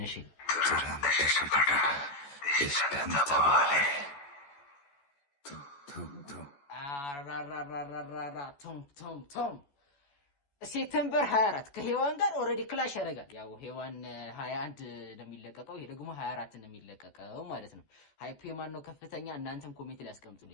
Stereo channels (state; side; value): late; right; 14 ms